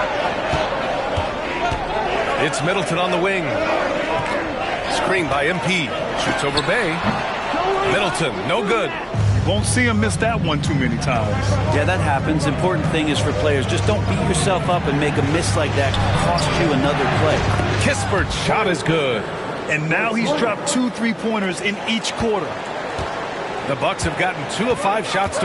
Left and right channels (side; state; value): both; identical; correlation 1.00